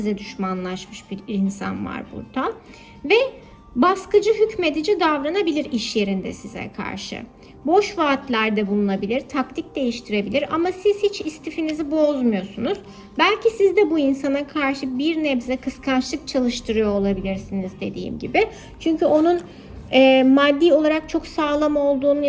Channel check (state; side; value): identical; both; correlation 1.00